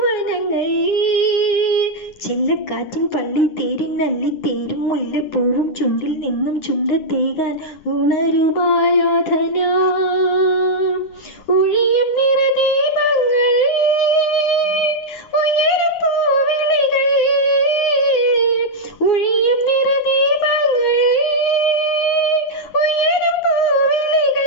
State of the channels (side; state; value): right; late; 10 ms